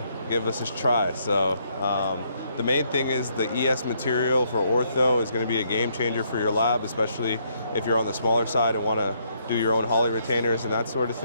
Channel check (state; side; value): inverted; both; correlation -0.72